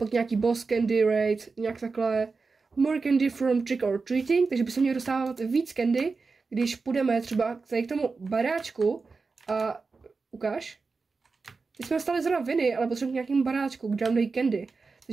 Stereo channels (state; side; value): quieter; left; 4.3 dB